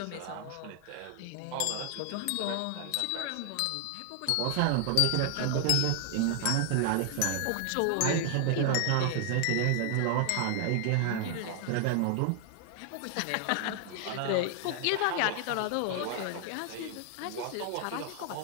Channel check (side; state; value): both; different; correlation 0.00